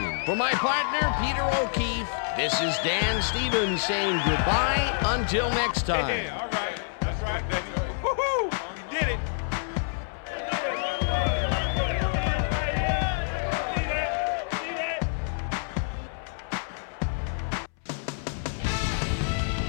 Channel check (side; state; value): right; silent; 60 dB below the other